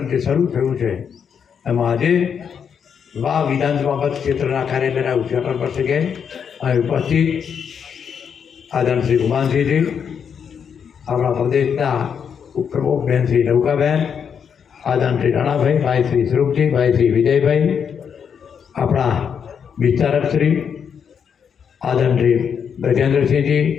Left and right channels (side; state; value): right; quieter; 7.3 dB